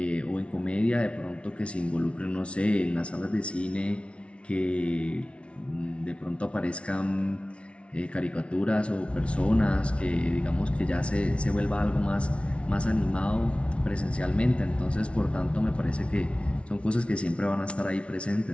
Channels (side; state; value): right; late; 0.060 ms